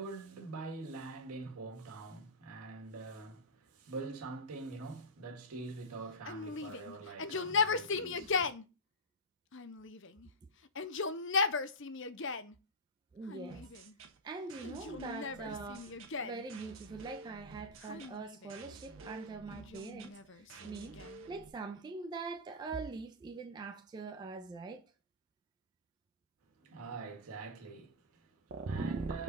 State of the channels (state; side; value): normal; both; correlation -0.16